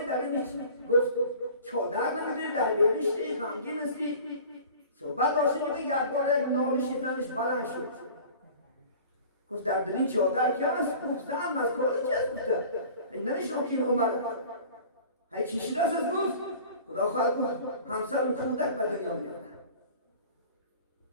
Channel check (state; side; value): inverted; both; correlation -0.43